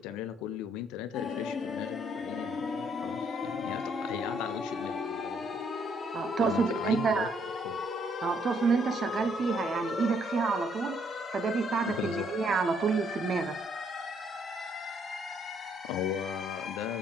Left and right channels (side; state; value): both; normal; correlation 0.69